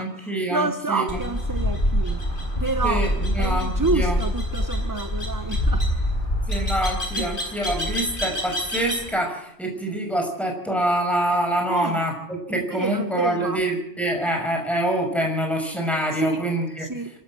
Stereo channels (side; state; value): both; normal; correlation 0.48